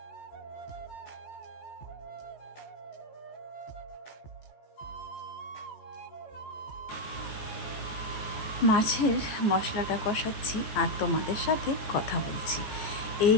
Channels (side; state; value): right; late; 14 ms